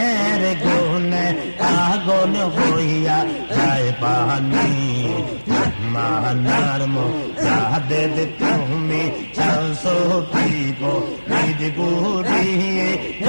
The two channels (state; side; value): inverted; both; correlation -1.00